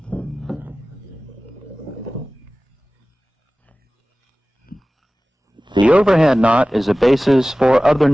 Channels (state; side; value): normal; both; correlation 0.97